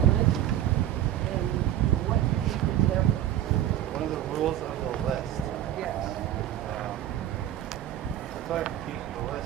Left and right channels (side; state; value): left; quieter; 11.9 dB